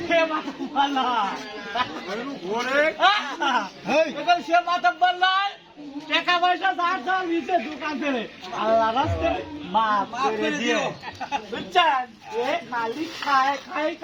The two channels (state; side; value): identical; both; correlation 1.00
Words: মাতব্বর নয় এরকম সে মাতব্বর নয় টাকা পয়সা ধার ধার নিতে দোকান থেকে আল্লাহ রাস্তে মাফ করে দিয়ে বুঝছেন এ খালি খায় খায়